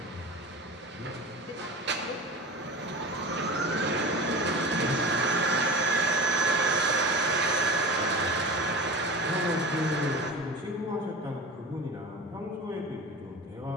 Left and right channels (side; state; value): both; normal; correlation 0.33